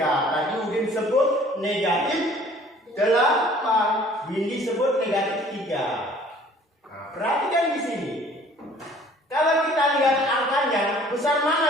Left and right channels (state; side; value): normal; both; correlation 0.53